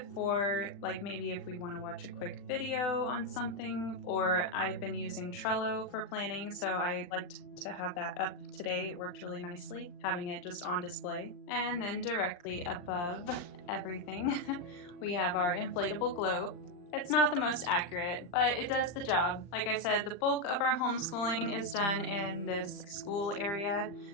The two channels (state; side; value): late; right; 40 ms